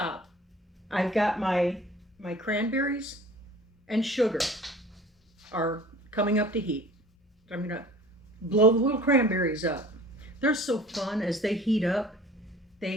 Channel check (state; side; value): normal; both; correlation 0.46